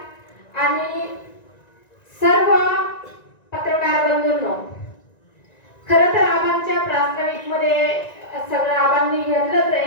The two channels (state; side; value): late; right; 1.9 ms